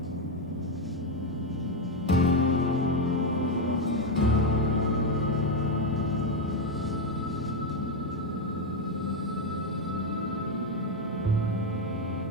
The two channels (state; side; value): normal; both; correlation 0.06